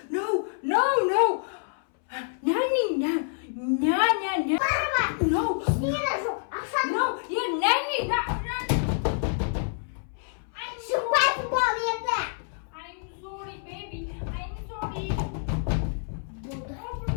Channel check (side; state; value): right; silent; 60 dB below the other